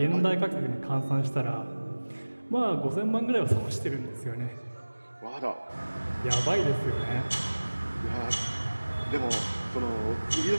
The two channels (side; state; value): both; inverted; correlation -1.00